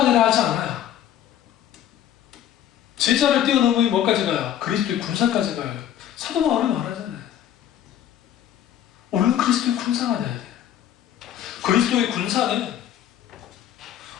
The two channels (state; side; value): quieter; right; 10.7 dB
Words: 되려 하지 않아요. 제자를 뛰어넘으면 뭐까지 가요? 그리스도의 군사까지 가요. 사도 바울이 말하잖아요. 우리는 그리스도의 군사가 돼야 돼요. 그리스도의 군사는